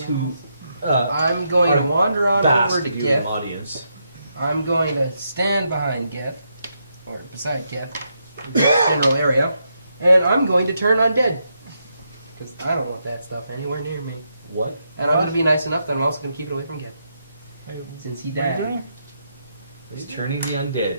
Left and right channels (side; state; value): both; inverted; correlation -0.81